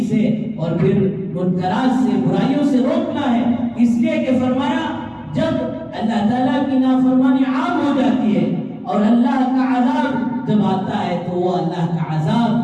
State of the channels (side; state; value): both; identical; correlation 1.00